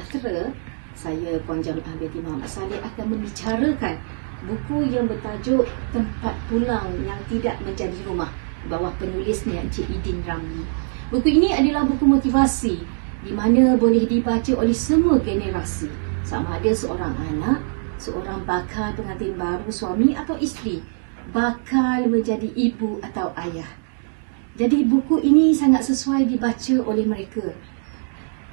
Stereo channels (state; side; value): silent; left; digital silence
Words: Saya Puan Jami'ah binti Muhammad Saleh akan membicarakan buku yang bertajuk Tempat Pulang yang Tidak Menjadi Rumah, bawah penulisnya Encik Idin Ramli. Buku ini adalah buku motivasi di mana boleh dibaca oleh semua generasi, sama ada seorang anak, seorang bakal pengantin baru, suami atau isteri, bakal menjadi ibu atau ayah. Jadi buku ini sangat sesuai dibaca oleh mereka.